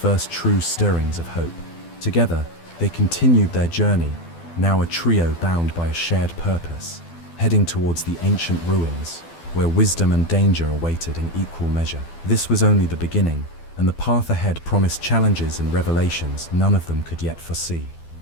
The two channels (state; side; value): late; right; 12 ms